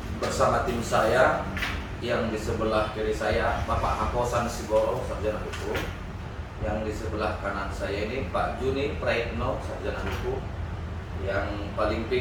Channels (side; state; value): both; identical; correlation 1.00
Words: bersama tim saya yang di sebelah kiri saya Bapak Hakosan Sigoro, sarjana hukum. Yang di sebelah kanan saya ini Pak Juni Praitno, sarjana hukum. Yang paling